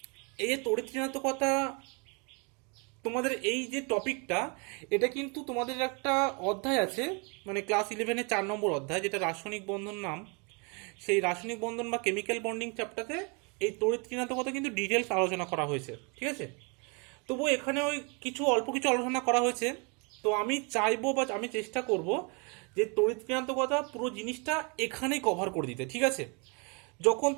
এই যে তড়িৎ ঋণাত্মকতা, তোমাদের এই যে টপিকটা, এটা কিন্তু তোমাদের একটা অধ্যায় আছে, মানে ক্লাস 11-এর 4 নম্বর অধ্যায়, যেটা রাসায়নিক বন্ধন নাম। সেই রাসায়নিক বন্ধন বা কেমিক্যাল বন্ডিং চ্যাপ্টারে এই তড়িৎ ঋণাত্মকতা কিন্তু ডিটেলস আলোচনা করা হয়েছে। ঠিক আছে, তবু এখানে ওই অল্প কিছু আলোচনা করা হয়েছে। তো আমি চাইবো বা আমি চেষ্টা করব যে তড়িৎ ঋণাত্মকতা পুরো জিনিসটা এখানেই কভার করে দিতে। ঠিক আছে, যখন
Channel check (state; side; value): quieter; left; 33.1 dB